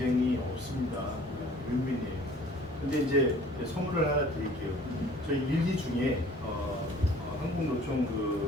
없습니다. 윈윈이에요. 근데 이제 선물을 하나 드릴게요. 저희 1기 중에 한국노총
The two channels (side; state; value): both; normal; correlation 0.51